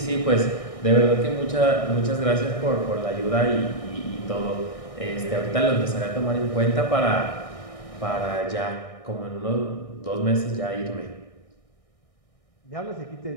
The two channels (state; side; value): late; right; 1.6 ms